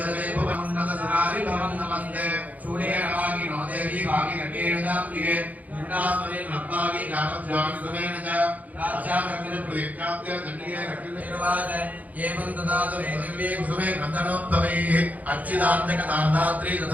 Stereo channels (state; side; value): late; left; 0.077 ms